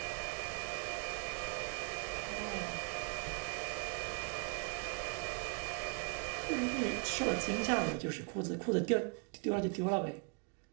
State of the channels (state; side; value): quieter; left; 38.5 dB